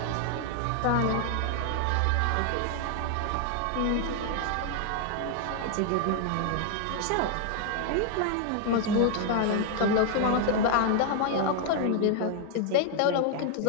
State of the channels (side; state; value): both; different; correlation 0.00